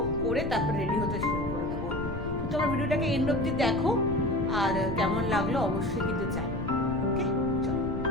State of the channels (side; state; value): left; noise; rumble, 8 dB below the sound